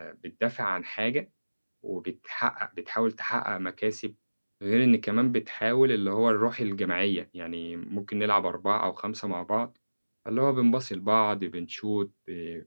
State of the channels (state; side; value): inverted; both; correlation -1.00